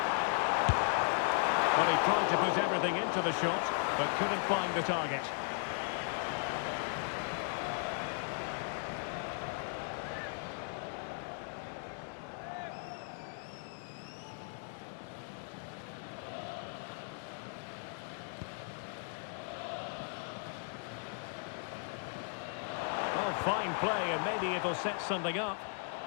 Well, he tried to put everything into the shot, but couldn't find the target. Well, fine play, and maybe it'll set something up.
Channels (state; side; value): silent; right; 53 dB below the other